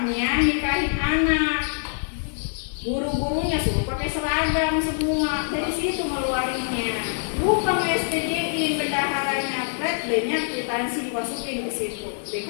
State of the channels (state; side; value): silent; right; 55 dB below the other